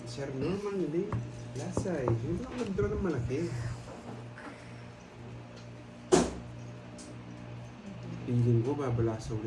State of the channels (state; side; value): identical; both; correlation 1.00